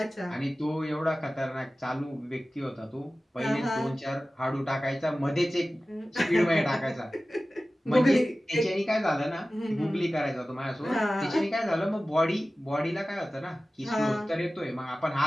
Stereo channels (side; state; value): both; normal; correlation 0.96